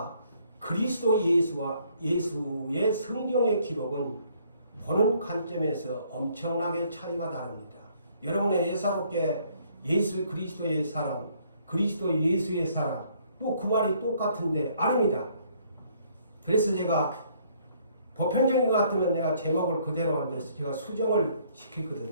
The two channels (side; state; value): both; inverted; correlation -0.65